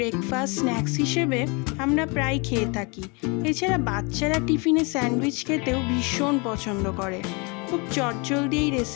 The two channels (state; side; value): quieter; right; 30.4 dB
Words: snacks হিসেবে আমরা প্রায় খেয়ে থাকি। এছাড়া বাচ্চারা টিফিনে স্যান্ডউইচ খেতেও ভীষণ পছন্দ করে। খুব চটজলদি এই